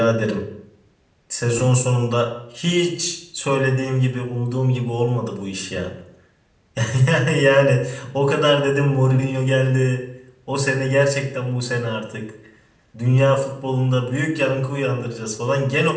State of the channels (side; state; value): both; identical; correlation 1.00